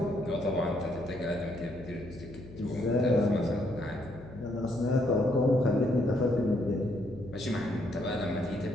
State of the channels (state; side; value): noise; left; hum, 16 dB below the sound